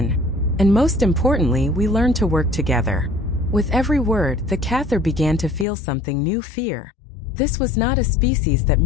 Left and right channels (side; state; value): right; drops out; at 5.7 s